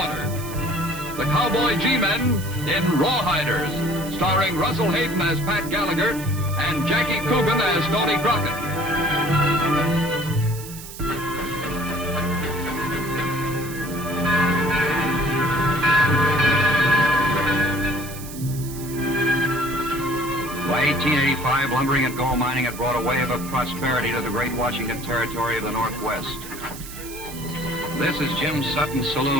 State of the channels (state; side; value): noise; right; hiss, 13 dB below the sound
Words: The Cowboy G Men in Rawhiders, starring Russell Hayden as Pat Gallagher and Jackie Coogan as Stoney Crockett. By 1885, lumbering and gold mining had brought a wave of prosperity to the great Washington Territory of the Northwest. This is Jim Sutton's